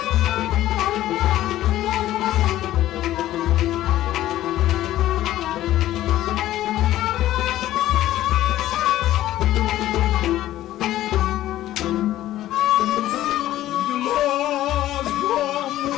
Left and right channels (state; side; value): quieter; right; 14.0 dB